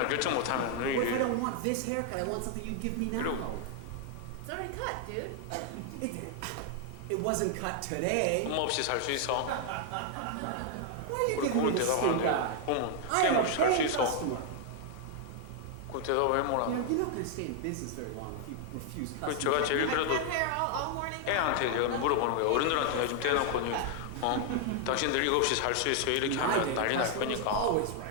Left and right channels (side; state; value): both; different; correlation 0.00